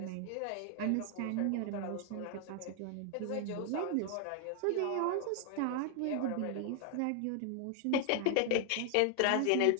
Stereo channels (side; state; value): both; different; correlation 0.00